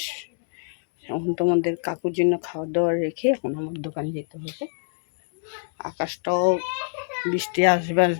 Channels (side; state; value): right; silent; digital silence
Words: এখন তোমাদের কাকুর জন্য খাওয়া দাওয়া রেখে এখন আমার দোকানে যেতে হবে। আকাশটাও বৃষ্টি আসবে